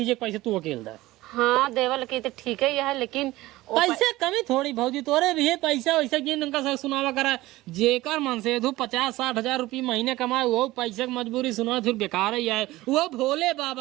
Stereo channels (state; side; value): quieter; left; 18.1 dB